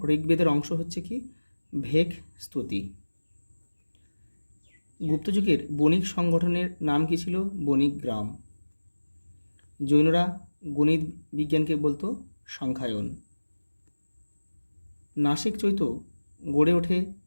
ঋগ্বেদের অংশ হচ্ছে কি? ভেক স্তুতি। গুপ্তযুগের বণিক সংগঠনের নাম কি ছিল? বণিক গ্রাম। জৈনরা গণিত বিজ্ঞানকে বলতো সংখ্যায়ন। নাসিক চৈত্য গড়ে ওঠে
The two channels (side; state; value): both; inverted; correlation -1.00